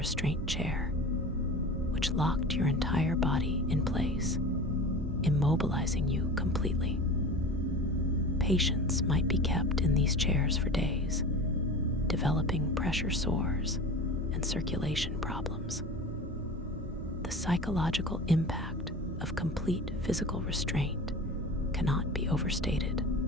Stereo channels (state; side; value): normal; both; correlation 0.34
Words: chair, which locked your entire body in place, immobilizing you completely. Patients might be kept in these chairs for days, developing pressure sores and circulation problems. The psychological impact of complete physical restraint cannot be overstated.